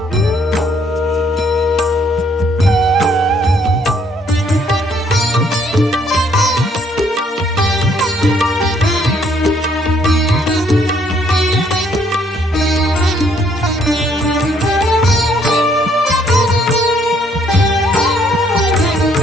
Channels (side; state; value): both; normal; correlation 0.66